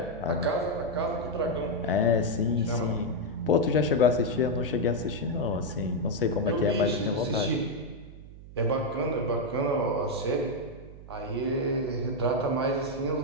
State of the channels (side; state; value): right; noise; hum, 16 dB below the sound